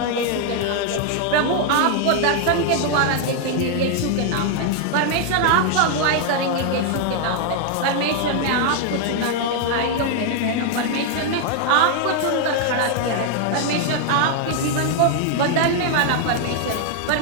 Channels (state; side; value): different; both; correlation 0.00